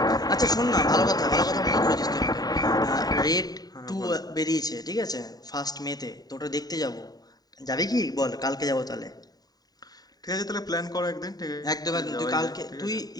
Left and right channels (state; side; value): late; right; 0.18 ms